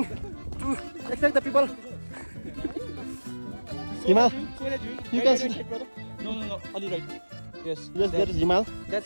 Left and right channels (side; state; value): both; inverted; correlation -1.00